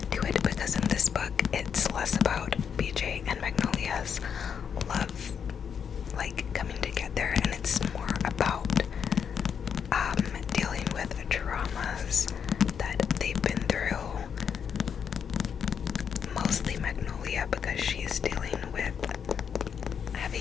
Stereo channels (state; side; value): quieter; right; 7.4 dB